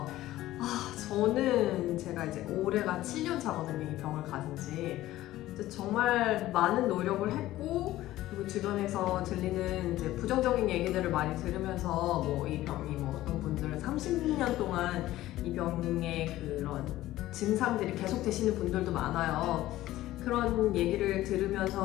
저는 제가 이제 올해가 7년 차거든요. 이 병을 가진 지. 정말 많은 노력을 했고, 그리고 주변에서 들리는 이제 부정적인 얘기들을 많이 들으면서 이 병이 어떤 분들은 30년 동안 이 병의 그런 증상들이 계속 되시는 분들도 많아요. 그런 얘기를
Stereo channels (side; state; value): right; quieter; 15.4 dB